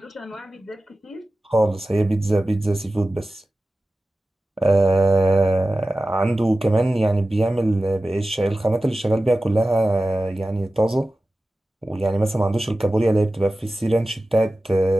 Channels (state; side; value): normal; both; correlation 0.95